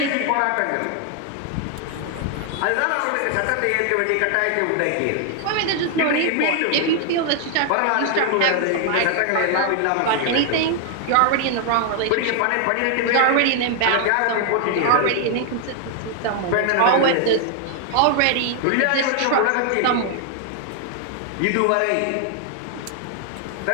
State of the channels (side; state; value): both; different; correlation 0.00